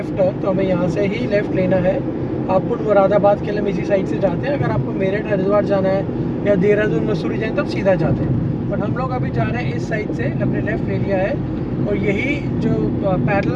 टर्न, तो हमें यहाँ से ही लेफ़्ट लेना है। हापुड़ मुरादाबाद के लिए हम इसी साइड से जाते हैं। अगर आपको मेरठ हरिद्वार जाना है या देहरादून मसूरी जाए तो आप सीधा जाते हैं, बट हम लोग अभी जा रहे हैं इस साइड से, हमने लेफ़्ट ले लिया है और यही जो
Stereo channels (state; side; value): identical; both; correlation 1.00